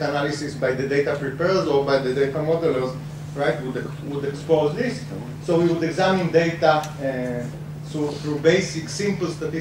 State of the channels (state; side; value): identical; both; correlation 1.00